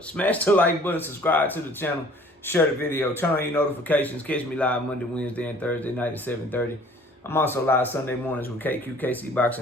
Smash the like button, subscribe to the channel, share the video, turn on your notifications. Catch me live Monday, Wednesday, and Thursday night at 7:30. I'm also live Sunday mornings with KC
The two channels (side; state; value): both; normal; correlation 0.52